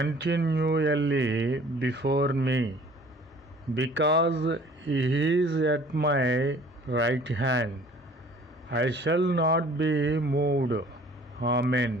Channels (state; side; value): normal; both; correlation 0.52